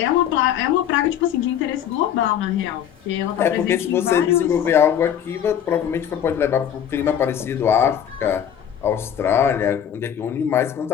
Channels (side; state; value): right; quieter; 9.4 dB